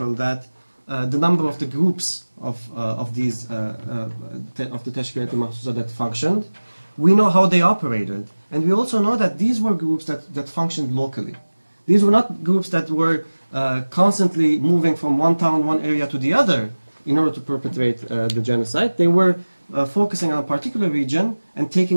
that the number of the groups of the Teşkilat-ı Mahsusa that functioned. We know how they operated, and we also know that these were groups that functioned locally. These were not groups that were constantly moving from one town, one area to the other in order to perpetrate the genocide. They were focusing on a particular region and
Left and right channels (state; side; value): inverted; both; correlation -1.00